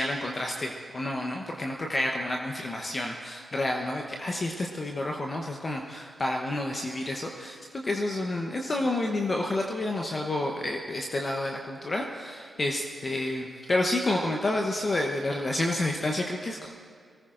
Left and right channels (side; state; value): both; normal; correlation 0.90